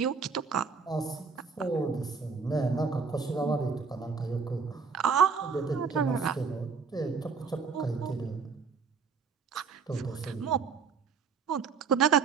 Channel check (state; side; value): quieter; left; 5.3 dB